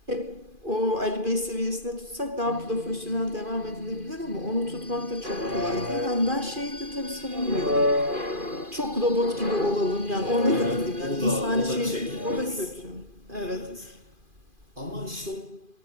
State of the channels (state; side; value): late; left; 2.4 ms